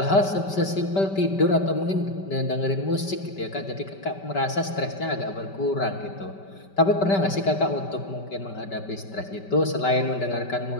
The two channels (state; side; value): late; right; 5.2 ms